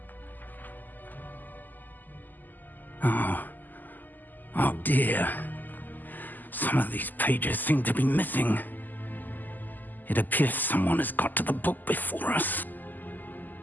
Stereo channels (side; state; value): right; late; 0.086 ms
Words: Oh dear. Some of these pages seem to be missing. It appears someone has got to the book before us.